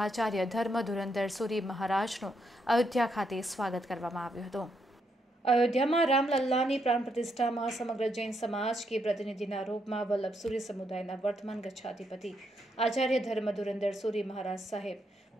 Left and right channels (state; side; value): normal; both; correlation 0.78